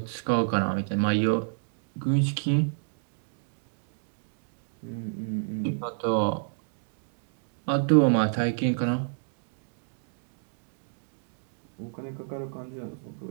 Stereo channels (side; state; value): left; silent; digital silence